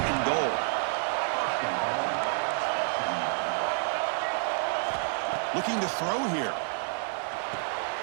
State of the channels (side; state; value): left; silent; 58 dB below the other